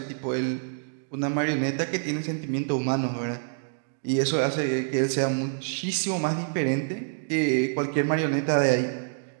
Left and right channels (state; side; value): silent; left; digital silence